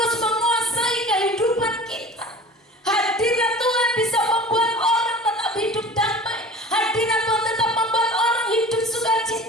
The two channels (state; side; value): normal; both; correlation 0.40